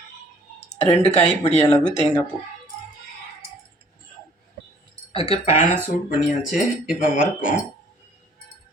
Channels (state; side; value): normal; both; correlation 0.58